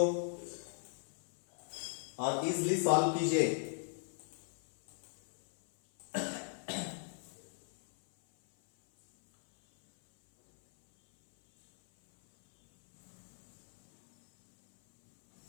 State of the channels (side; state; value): right; silent; 53 dB below the other